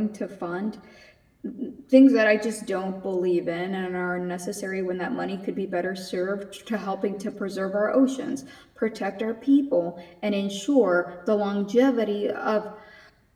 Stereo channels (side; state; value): both; identical; correlation 1.00